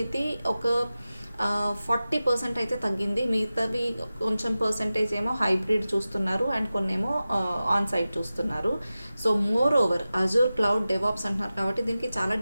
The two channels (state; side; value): inverted; both; correlation -0.95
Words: ఒక 40% అయితే తగ్గింది. మిగతావి కొంచెం పర్సంటేజ్ ఏమో హైబ్రిడ్ చూస్తున్నారు, అండ్ కొన్నేమో ఆన్ సైట్ చూస్తున్నారు. So more over Azure cloud DevOps అంటున్నారు కాబట్టి దీనికి చాలా